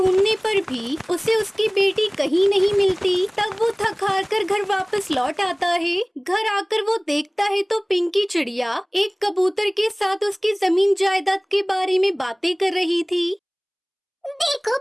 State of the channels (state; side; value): identical; both; correlation 1.00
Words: पर भी उसे उसकी बेटी कहीं नहीं मिलती। तब वो थक हार कर घर वापस लौट आता है। घर आकर वो देखता है तो पिंकी चिड़िया एक कबूतर के साथ उसकी जमीन जायदाद के बारे में बातें कर रही थी। देखो